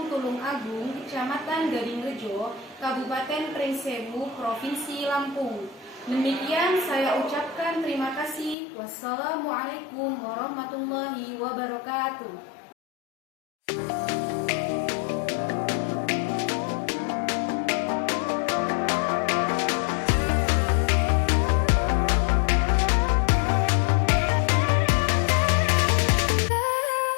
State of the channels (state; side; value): drops out; right; at 8.6 s